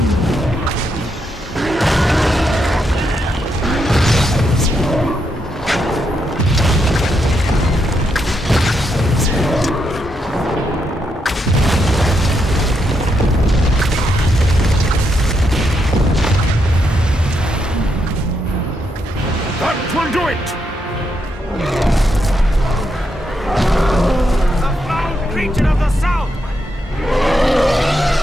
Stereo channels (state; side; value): normal; both; correlation 0.80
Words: That will do it! The foul creature of the south!